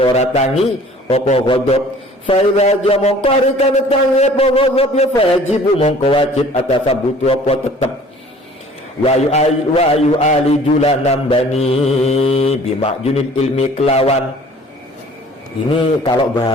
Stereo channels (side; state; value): both; normal; correlation 0.50